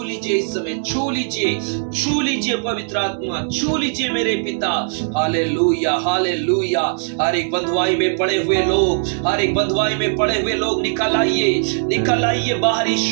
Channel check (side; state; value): left; silent; digital silence